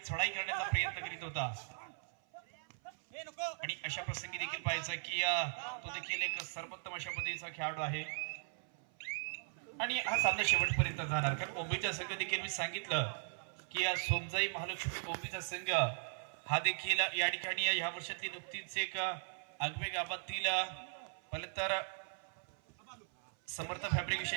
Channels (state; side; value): silent; left; 52 dB below the other